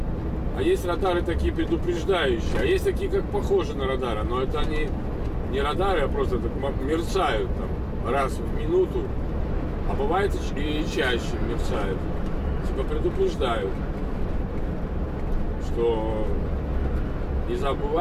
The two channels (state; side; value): identical; both; correlation 1.00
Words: А есть радары такие предупреждающие, а есть такие, как похожи на радары, но это они не радары, а просто так мерцают там раз в минуту, а бывает и чаще мерцают. Типа предупреждают, что не